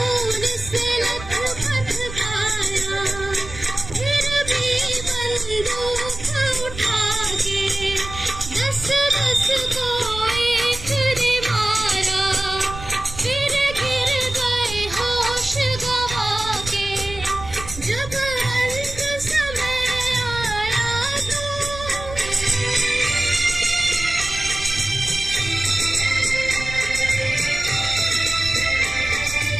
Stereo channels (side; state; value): right; noise; rumble, 12 dB below the sound